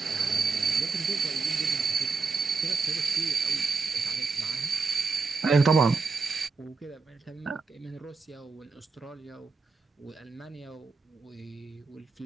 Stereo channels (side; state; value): left; quieter; 4.5 dB